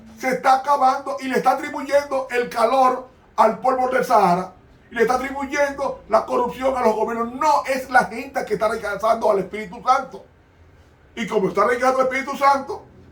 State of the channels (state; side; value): identical; both; correlation 1.00